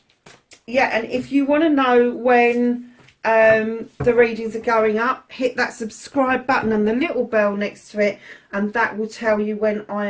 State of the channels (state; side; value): identical; both; correlation 1.00